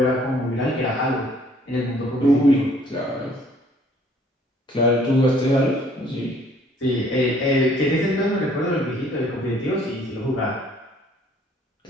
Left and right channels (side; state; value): both; normal; correlation 0.59